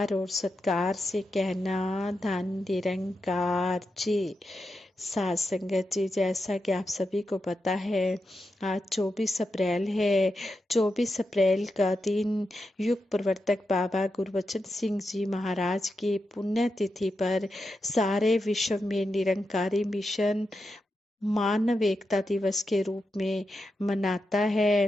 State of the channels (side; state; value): both; normal; correlation 0.88